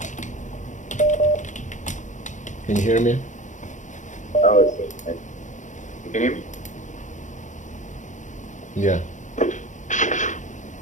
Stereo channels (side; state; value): right; late; 0.36 ms